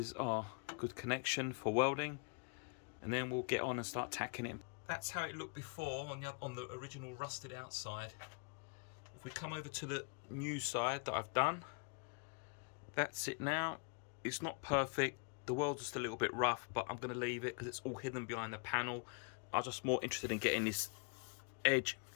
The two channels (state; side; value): quieter; right; 36.1 dB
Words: are a good connection for welding, and then we'll get on and start tacking it. That's how it looked before on the original rusted outside. If we come over to the new side that I've done, that's it now. It's not perfect. The weld's just a little bit rough, but I'm going to leave it because it's all hidden behind the panel. I'm just more interested in getting this edge